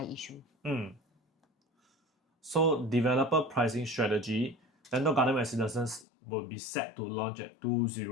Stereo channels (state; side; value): drops out; right; at 6.1 s